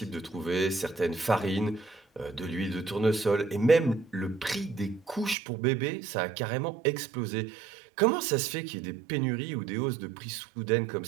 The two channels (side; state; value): left; drops out; at 5.4 s